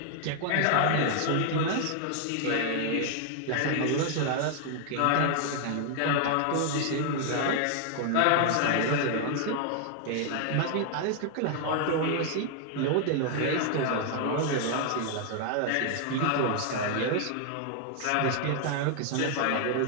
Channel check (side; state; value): both; different; correlation 0.00